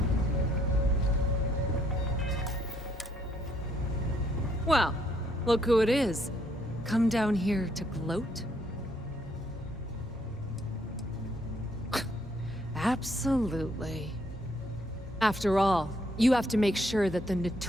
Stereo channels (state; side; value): normal; both; correlation 0.70